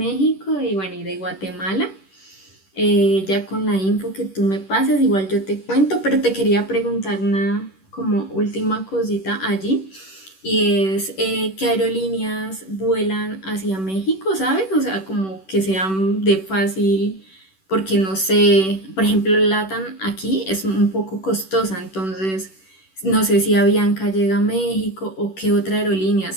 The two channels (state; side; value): late; right; 10 ms